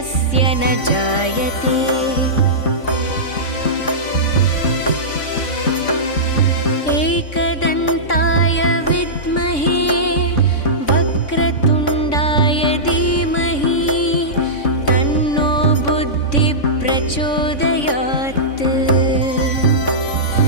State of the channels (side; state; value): right; late; 3.6 ms